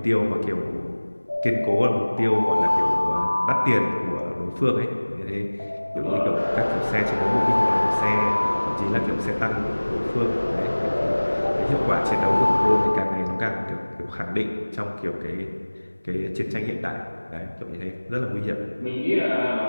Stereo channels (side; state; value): both; inverted; correlation -1.00